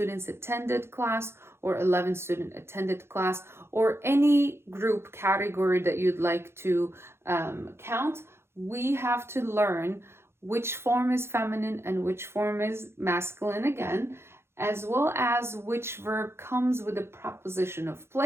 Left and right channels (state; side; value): late; left; 0.12 ms